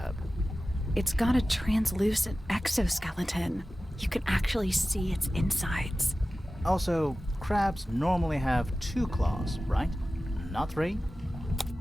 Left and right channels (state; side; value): normal; both; correlation 0.95